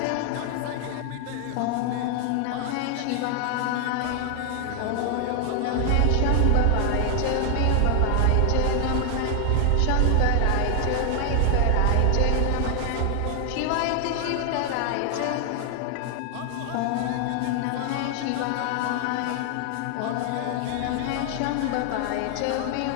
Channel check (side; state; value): both; different; correlation 0.00